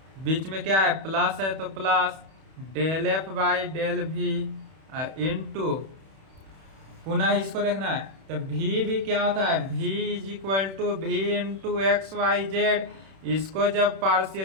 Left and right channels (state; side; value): late; left; 31 ms